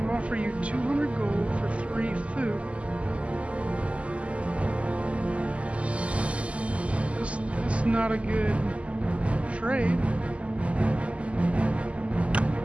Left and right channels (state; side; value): late; left; 0.061 ms